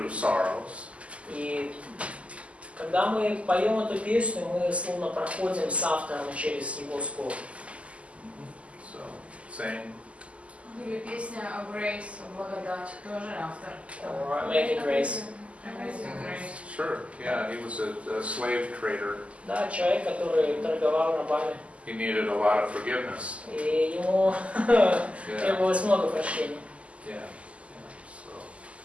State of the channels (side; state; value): left; late; 0.061 ms